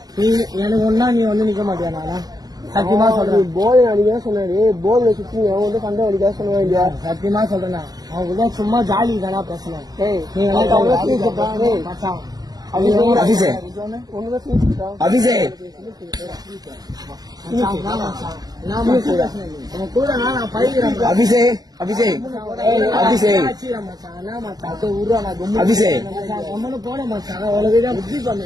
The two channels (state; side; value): late; left; 0.19 ms